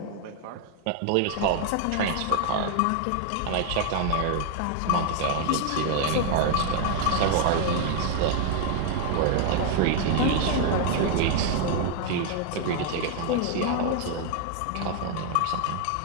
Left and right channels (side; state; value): both; different; correlation 0.00